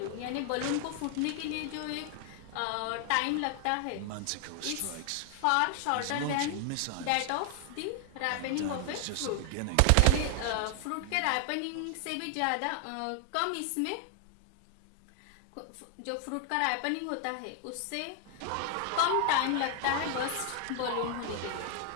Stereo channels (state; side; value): different; both; correlation 0.00